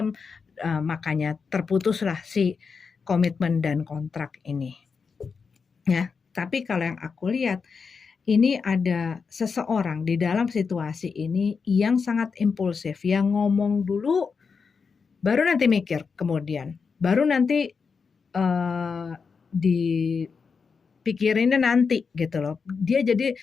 makanya terputuslah si komitmen dan kontrak ini ya. Tapi kalau yang aku lihat, ini ada seseorang di dalam situasi ini yang sangat impulsif, yang ngomong dulu baru nanti mikir kemudian, baru nanti dipikirinnya nanti gitu loh. Dia jadi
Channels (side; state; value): right; quieter; 5.4 dB